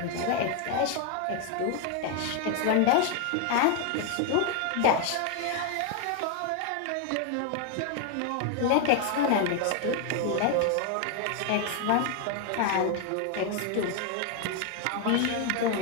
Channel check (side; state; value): both; different; correlation 0.01